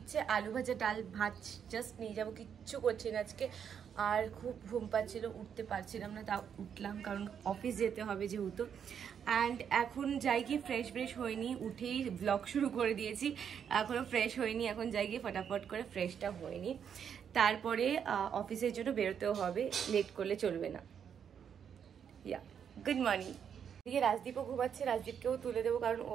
আলু ভাজা, ডাল, ভাত জাস্ট নিয়ে যাবো, কিচ্ছু করছি না আজকে। আর খুব ঘুম পাচ্ছিল, উঠতে পারছিলাম না, তাও উঠলাম কারণ অফিস যেতে হবে যেহেতু। অ্যান্ড এখন যাই গিয়ে ফ্রেশ হয়নি, উঠেই ব্লগ শুরু করে দিয়েছি। এখনও ফ্রেশ হয়নি, এখন যাই গিয়ে ফটাফট করে ফ্রেশটা হয়নি। তারপরে অফিসের জন্য বেরোতেও হবে, লেট করলে চলবে না। ইয়া, গুড মর্নিং। এদিকে রাজদীপও ঘুমাচ্ছে, রাজদীপকেও তুলে দেবো কারণ ও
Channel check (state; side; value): quieter; left; 7.9 dB